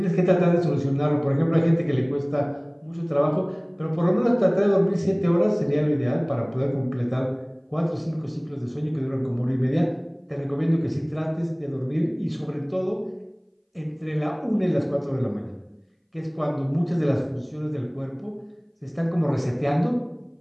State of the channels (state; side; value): identical; both; correlation 1.00